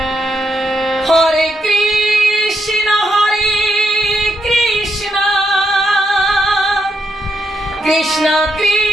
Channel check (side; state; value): both; normal; correlation 0.80